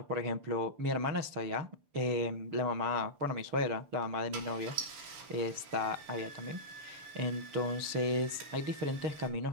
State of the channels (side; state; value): left; late; 6.8 ms